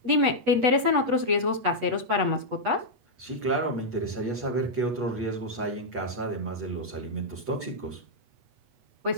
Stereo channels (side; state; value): left; late; 8.3 ms